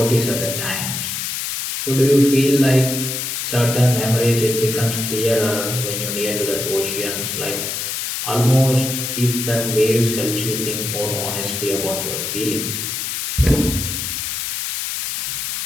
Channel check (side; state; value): left; noise; hiss, 3 dB below the sound